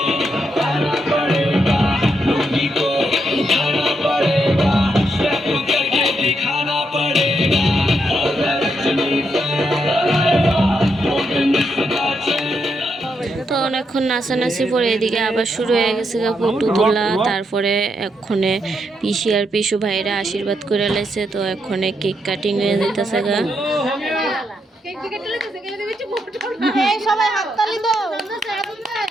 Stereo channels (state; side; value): normal; both; correlation 0.80